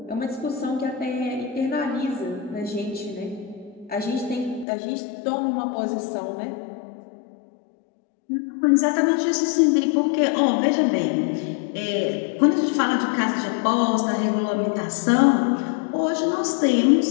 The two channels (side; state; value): right; drops out; at 4.7 s